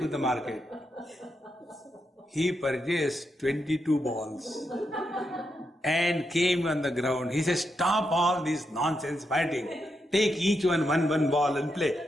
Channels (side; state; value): both; normal; correlation 0.83